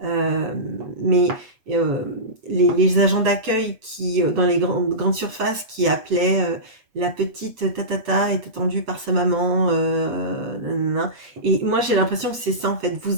euh, mais euh, les agents d'accueil qui, dans les grandes surfaces, qui appelaient la petite tatata est attendue par sa maman, nanana. Et moi j'ai l'impression que c'est ça en fait.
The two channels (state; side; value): late; left; 8.0 ms